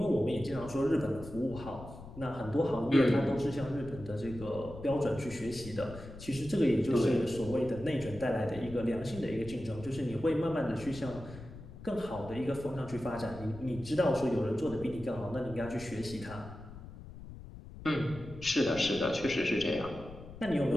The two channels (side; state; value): left; noise; rumble, 14 dB below the sound